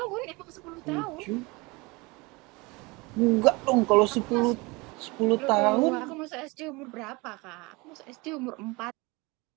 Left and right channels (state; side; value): quieter; left; 25.3 dB